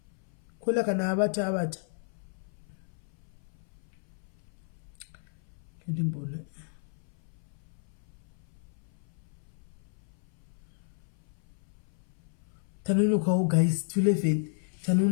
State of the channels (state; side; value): silent; right; 56 dB below the other